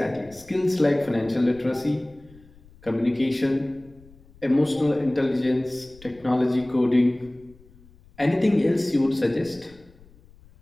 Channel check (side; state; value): left; noise; rumble, 25 dB below the sound